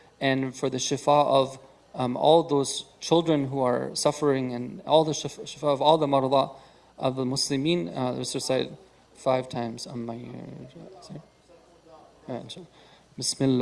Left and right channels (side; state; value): both; identical; correlation 1.00